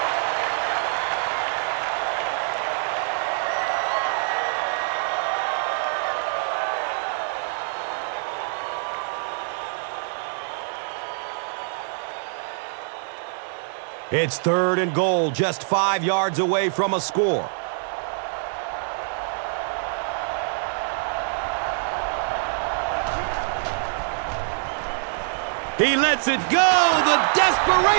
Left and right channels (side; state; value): left; silent; 60 dB below the other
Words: It's 3rd and goal, just 5 yards away from a score. He lets it go, the